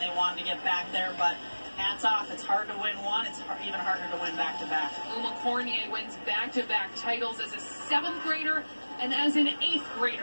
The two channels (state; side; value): inverted; both; correlation -1.00